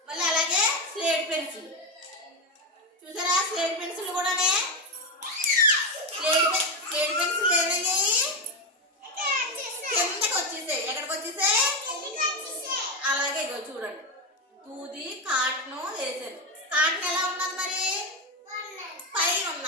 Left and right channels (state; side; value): normal; both; correlation 0.10